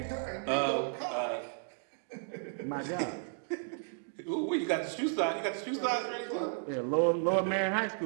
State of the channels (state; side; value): silent; left; digital silence